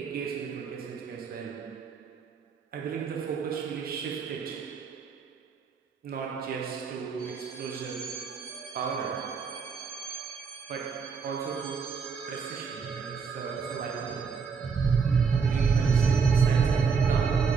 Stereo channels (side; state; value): left; quieter; 5.6 dB